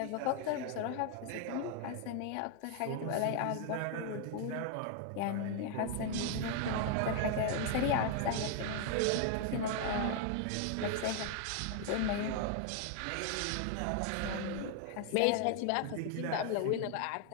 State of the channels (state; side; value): different; both; correlation 0.00